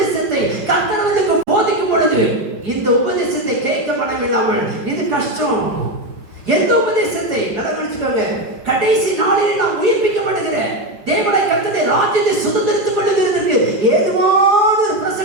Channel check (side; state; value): left; late; 5.2 ms